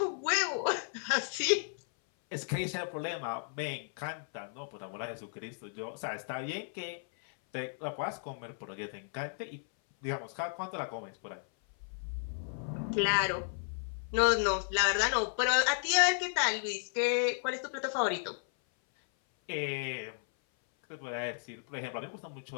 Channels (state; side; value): silent; right; 55 dB below the other